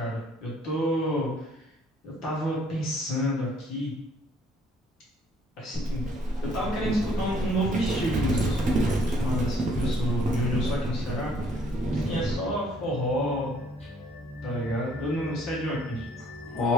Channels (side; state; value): both; normal; correlation 0.62